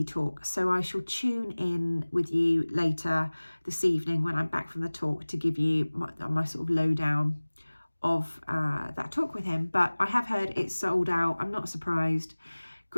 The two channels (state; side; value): inverted; both; correlation -1.00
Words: talk. So I shall tune in with you later this evening when I'm back from the talk to give you my sort of lowdown of that talk with him. But I have heard it's sold out. I'm not surprised.